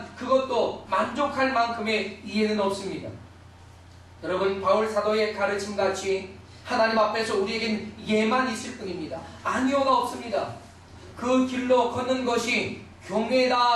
그것도 만족할 만큼의 이해는 없습니다. 여러분, 바울 사도의 가르침같이 하나님 앞에서 우리에겐 예만 있을 뿐입니다. 아니오가 없습니다. 그 길로 걷는 것이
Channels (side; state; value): both; identical; correlation 1.00